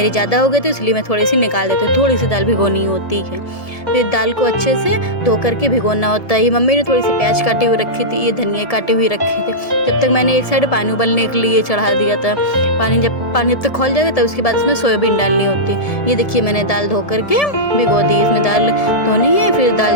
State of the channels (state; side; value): late; right; 1.7 ms